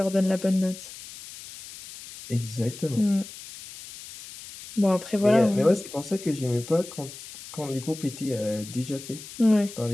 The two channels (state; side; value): noise; left; hiss, 15 dB below the sound